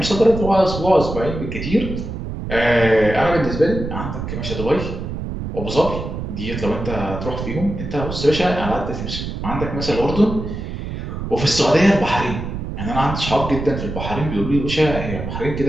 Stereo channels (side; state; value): right; noise; rumble, 6 dB below the sound